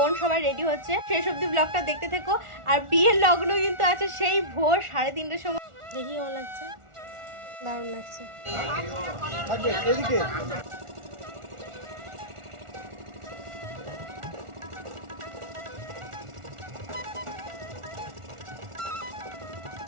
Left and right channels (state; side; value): late; left; 1.4 ms